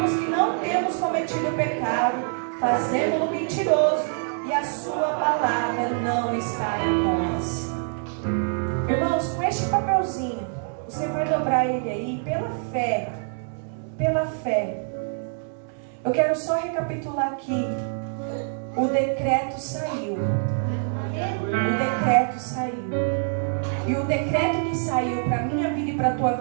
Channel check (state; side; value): silent; left; 62 dB below the other